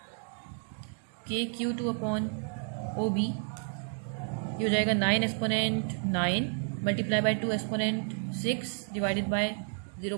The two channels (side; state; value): left; silent; 57 dB below the other